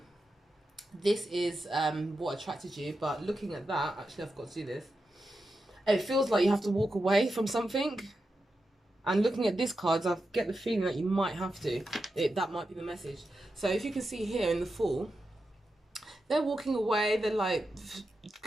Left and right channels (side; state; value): both; normal; correlation 0.89